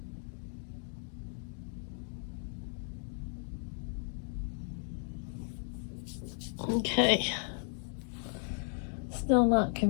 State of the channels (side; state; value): right; silent; 54 dB below the other